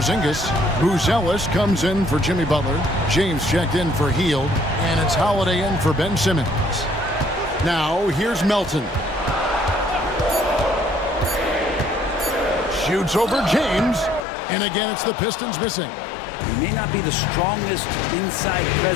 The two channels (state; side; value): drops out; right; at 14.2 s